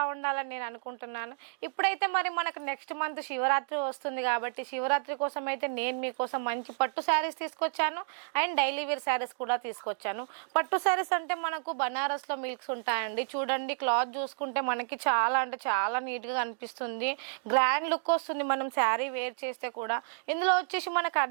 నేను అనుకుంటున్నాను. ఇప్పుడైతే మరి మనకు నెక్స్ట్ మంత్ శివరాత్రి వస్తుంది కాబట్టి శివరాత్రి కోసం అయితే నేను మీకోసం మంచి పట్టు శారీస్ తీసుకొచ్చాను అండ్ డైలీ వేర్ శారీస్ కూడా తీసుకొచ్చాను. పట్టు శారీస్ అంటే మనకు బనారస్లో మిల్క్స్ ఉంటాయండి. చూడండి, క్లాత్ చూసుకుంటే మనకి చాలా అంటే చాలా నీట్గా కనిపిస్తుంది. గ్రాండ్ లుక్ వస్తుంది మనం శారీ వేర్ చేస్తే కూడా. ఇందులో వచ్చేసి మనకు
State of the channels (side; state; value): left; silent; digital silence